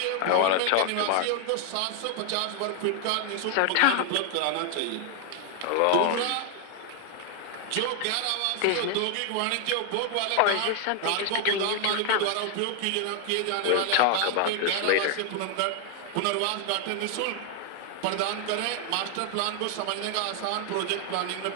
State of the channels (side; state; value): both; different; correlation 0.00